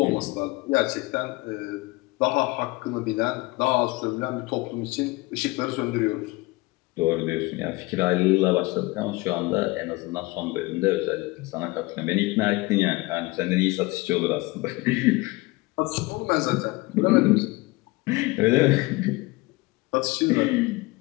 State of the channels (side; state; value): right; quieter; 22.8 dB